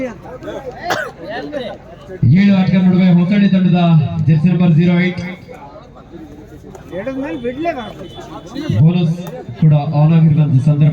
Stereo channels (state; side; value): identical; both; correlation 1.00